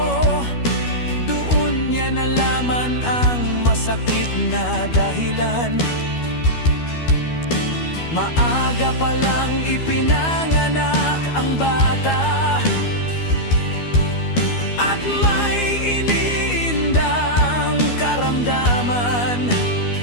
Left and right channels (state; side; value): late; right; 12 ms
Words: Doon niya nalaman ang masakit na dahilan. Maaga pa lang ipinanganak ang bata, at may iniindang karamdaman.